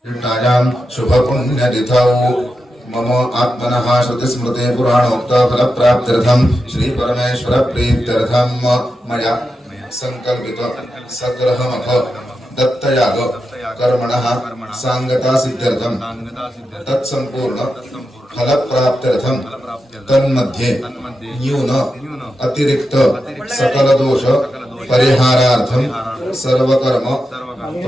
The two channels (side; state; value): both; normal; correlation 0.89